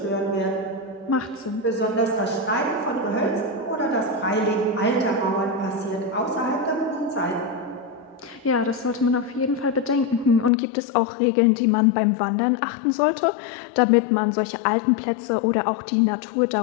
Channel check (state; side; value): drops out; right; at 10.5 s